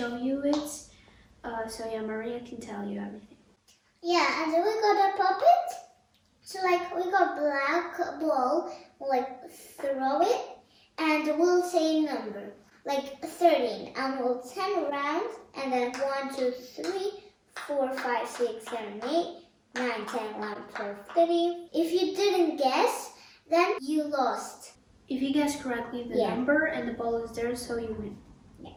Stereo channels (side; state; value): both; identical; correlation 1.00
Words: you it. So yeah, Maria can tell you everything. Yeah, and then we got a Popit. So we got black ball, throw it, and we'll say a number, 13, and we'll 10 around, and then 1, 2, 3, 4, 5, 6, 7, 8, 9, 10, 11, 12, 13. If you didn't guess, then you lost. If you guess correctly the number and the ball is there, so you win. Yeah.